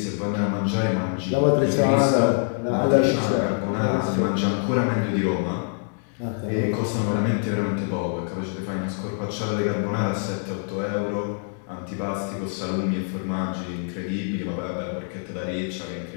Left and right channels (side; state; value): right; silent; 59 dB below the other